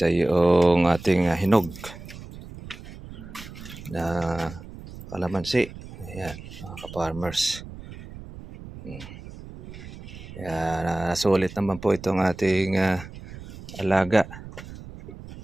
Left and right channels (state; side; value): noise; right; rumble, 14 dB below the sound